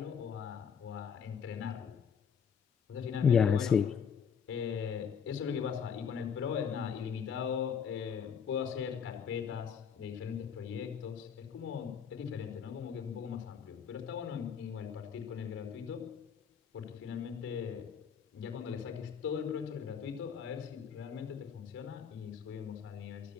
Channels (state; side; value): quieter; right; 7.0 dB